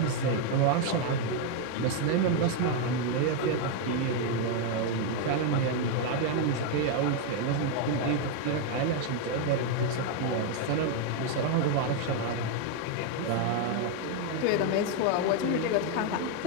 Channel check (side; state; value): both; different; correlation 0.01